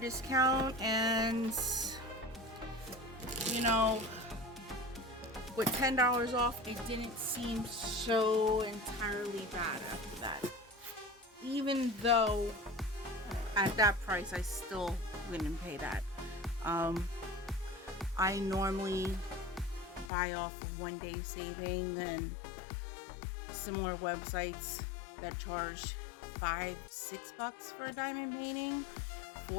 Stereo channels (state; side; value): drops out; right; at 20.1 s